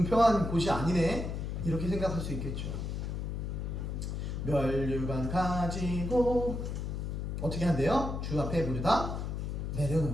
곳이 아니네? 이렇게 생각할 수 있겠죠. 면류관 가지고 어떻게 한대요? 주 앞에 모두 다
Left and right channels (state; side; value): noise; left; hum, 3 dB below the sound